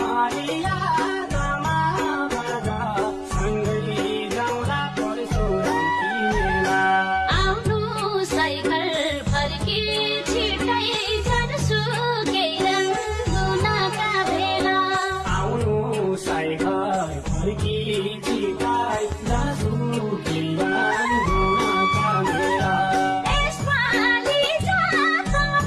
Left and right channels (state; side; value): identical; both; correlation 1.00